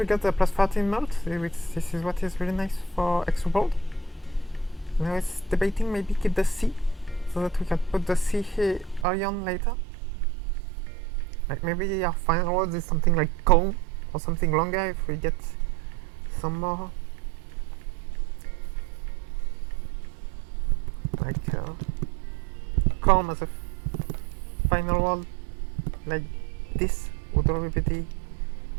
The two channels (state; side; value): drops out; left; at 9.1 s